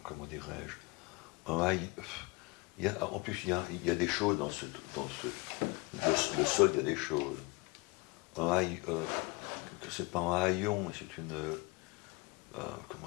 Comment dirais-je, en plus il y a des choses le sol, il y a des choses. Que c'est pas un haillon, mais c'est une,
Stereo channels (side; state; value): right; quieter; 26.1 dB